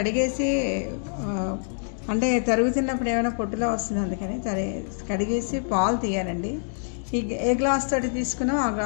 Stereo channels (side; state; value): right; silent; digital silence